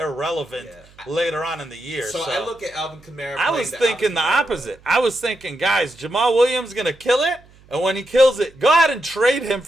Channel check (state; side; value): noise; right; hum, 27 dB below the sound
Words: later on in the year. So I look at Alvin Kamara. I was thinking the opposite. I was thinking, guys, Jamal Williams going to kill it, and when he kills it, go ahead and trade him